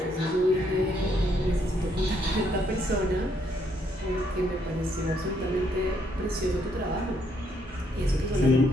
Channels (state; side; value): normal; both; correlation 0.72